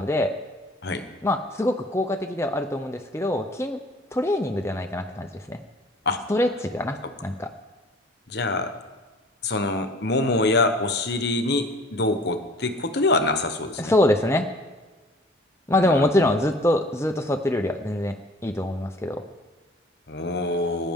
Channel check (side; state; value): both; normal; correlation 0.49